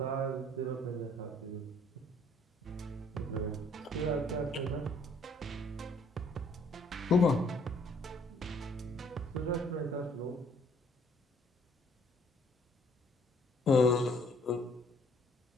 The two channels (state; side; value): normal; both; correlation 0.62